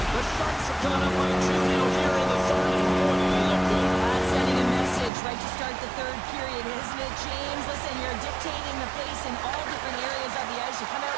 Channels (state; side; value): drops out; left; at 5.1 s